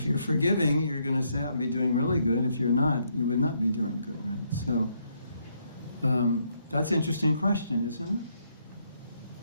you're forgiving, you're going to say, I'll be doing really good. If you're not, you would not be doing good, right? So that's an interesting question, isn't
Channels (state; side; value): inverted; both; correlation -0.74